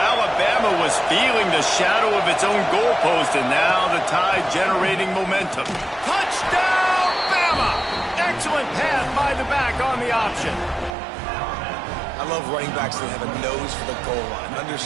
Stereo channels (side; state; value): left; drops out; at 11.0 s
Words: was feeling the shadow of its own goalpost, and now the Tide generating momentum. Touchdown, Bama! Excellent pass by the back on the option. I love running backs that have a nose for the goal line.